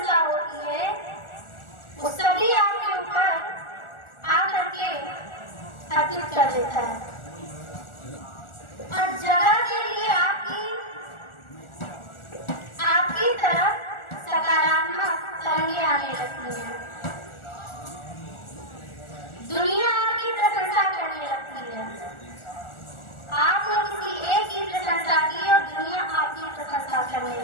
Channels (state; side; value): late; right; 1.4 ms